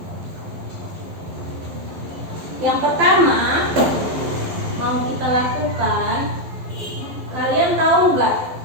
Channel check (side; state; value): left; late; 12 ms